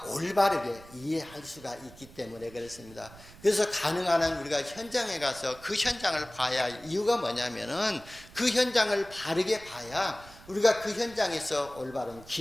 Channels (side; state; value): right; noise; rumble, 20 dB below the sound